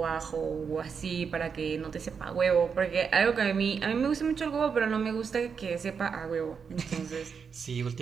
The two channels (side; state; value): left; quieter; 6.2 dB